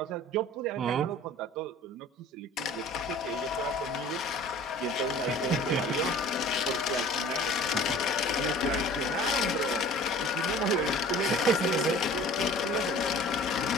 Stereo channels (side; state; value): both; normal; correlation 0.46